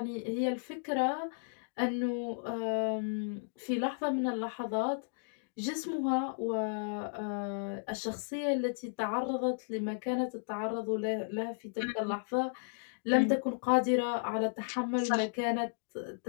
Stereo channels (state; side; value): silent; right; digital silence